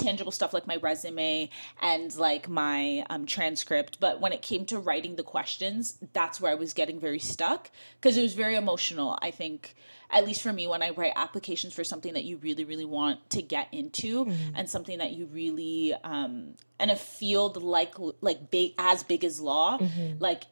stuff, like my resume and like my transcript. But when it came to writing the questions, that's where I was getting very stuck, because it was very emotional. I think, at least for me, when I write applications for something that you really, really want to get into and something that you really, in a field like big as law, like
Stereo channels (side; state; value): both; inverted; correlation -1.00